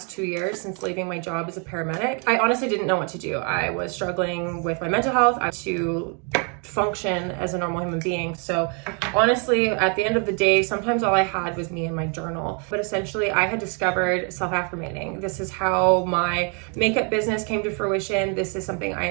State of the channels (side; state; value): left; quieter; 37.6 dB